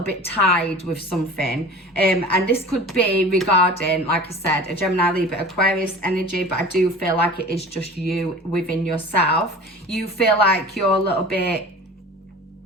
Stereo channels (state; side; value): normal; both; correlation 0.39